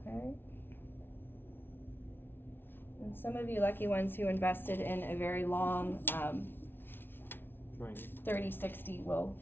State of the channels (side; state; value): right; late; 0.10 ms